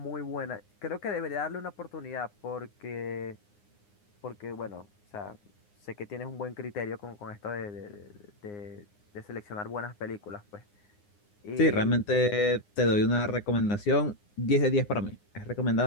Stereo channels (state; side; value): late; right; 9.7 ms